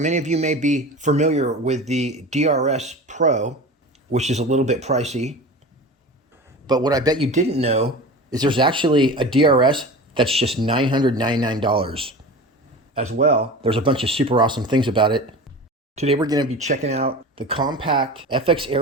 of you may be familiar with the DRS Pro, which is a little bit pricey. But what I bet you didn't know is there's actually a DRS that's just $999 as well. There's a bunch of super awesome things about it. Today we're going to be checking out the compact FX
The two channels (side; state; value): both; normal; correlation 0.33